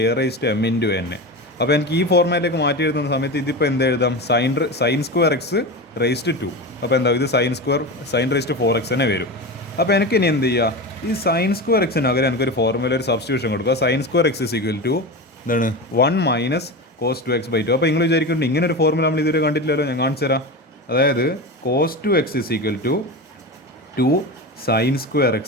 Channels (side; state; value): both; normal; correlation 0.24